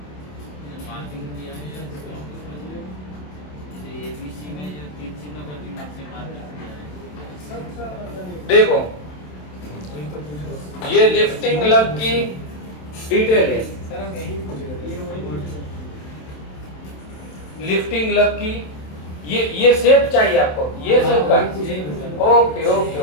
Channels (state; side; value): late; right; 27 ms